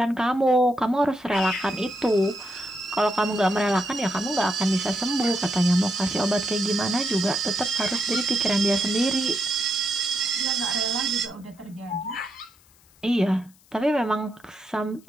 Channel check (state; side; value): noise; left; hiss, 30 dB below the sound